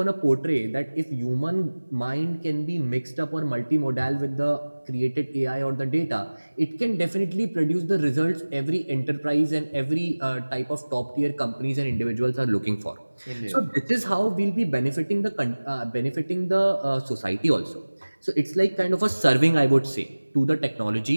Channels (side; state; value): both; inverted; correlation -1.00